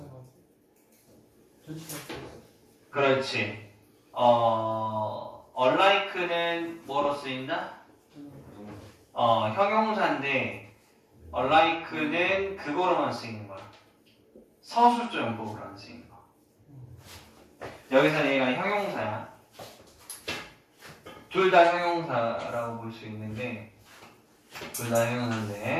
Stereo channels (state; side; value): identical; both; correlation 1.00